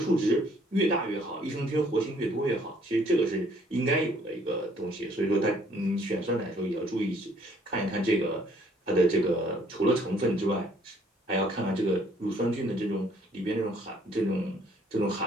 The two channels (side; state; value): both; normal; correlation 0.62